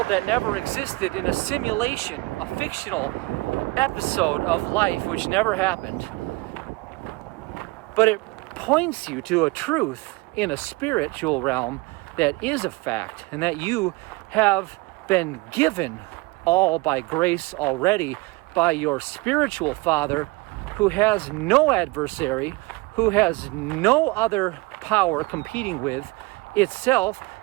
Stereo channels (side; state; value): left; quieter; 23.9 dB